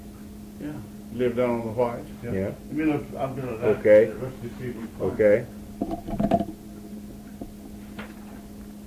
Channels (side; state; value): both; identical; correlation 1.00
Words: Yeah, live down on the White. Yeah. Let me look, I'm gonna. Okay. Let's just see if we can find Okay.